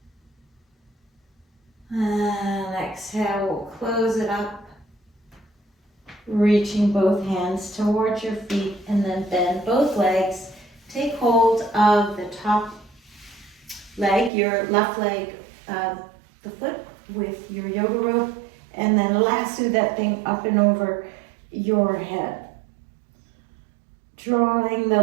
And exhale, we'll close it up. Reaching both hands towards your feet and then bend both legs. Take hold of the top leg, your left leg, the foot with your yoga rope, and then lasso that thing up and over your head. Drawing the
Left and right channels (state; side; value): drops out; left; at 14.3 s